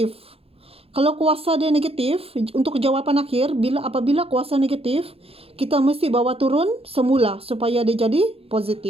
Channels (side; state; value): left; late; 0.28 ms